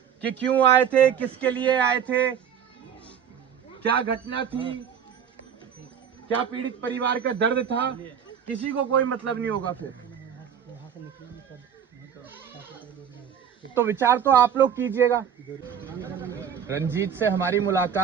कि क्यों आए थे, किसके लिए आए थे, क्या घटना थी, क्या पीड़ित परिवार का दर्द था। किसी को कोई मतलब नहीं होगा। फिर तो विचार तो आप लोग कीजिएगा। रंजीत से हमारी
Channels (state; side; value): quieter; left; 8.3 dB